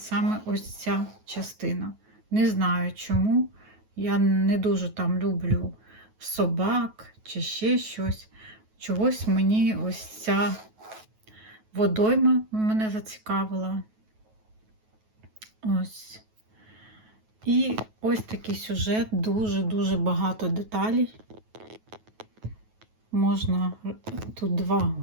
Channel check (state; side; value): late; left; 9.3 ms